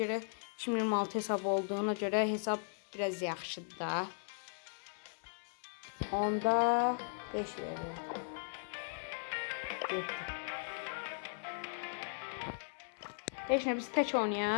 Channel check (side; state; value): right; silent; 53 dB below the other